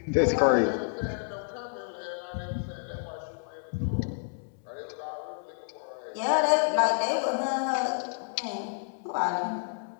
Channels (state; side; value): silent; right; digital silence